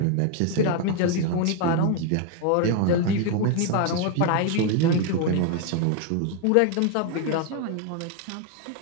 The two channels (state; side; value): different; both; correlation 0.01